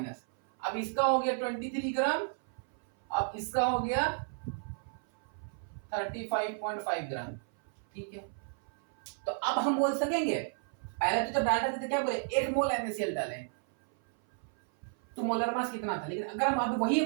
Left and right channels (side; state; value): left; silent; 56 dB below the other